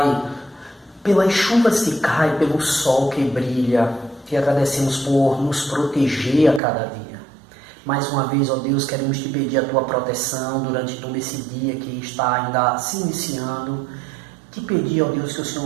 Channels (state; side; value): drops out; left; at 6.6 s